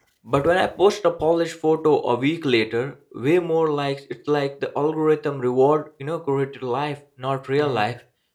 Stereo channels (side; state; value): both; identical; correlation 1.00